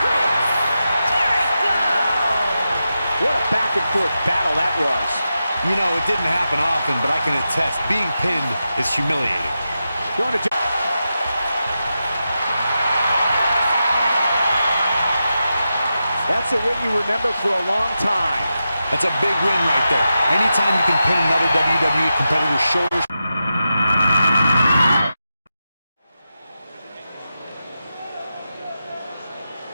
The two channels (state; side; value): inverted; both; correlation -0.90